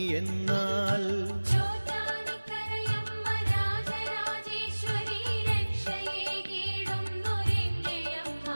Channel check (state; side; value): inverted; both; correlation -1.00